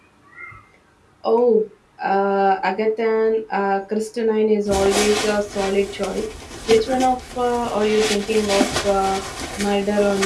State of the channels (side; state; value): both; identical; correlation 1.00